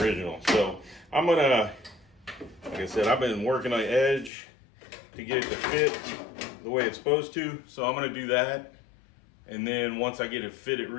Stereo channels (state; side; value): drops out; right; at 4.3 s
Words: So I'm gonna, like I said, I've been working on the edge to get it to fit the way it's supposed to. So I'm gonna do that, and then once I get it fitted